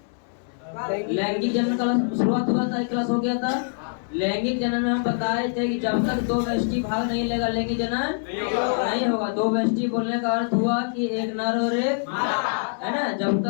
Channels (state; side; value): silent; right; 60 dB below the other